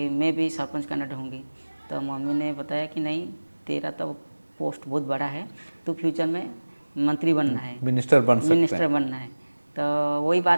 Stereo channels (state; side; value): inverted; both; correlation -1.00